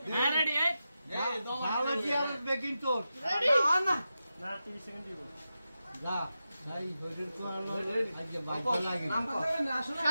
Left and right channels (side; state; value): both; inverted; correlation -0.91